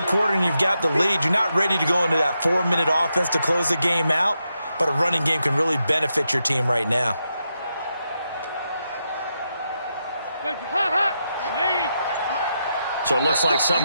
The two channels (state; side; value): inverted; both; correlation -0.85